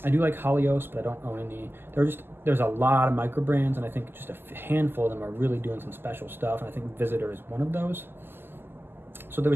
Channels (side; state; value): left; late; 0.10 ms